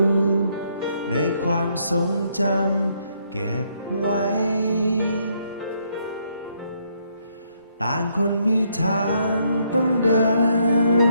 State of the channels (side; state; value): both; inverted; correlation -0.73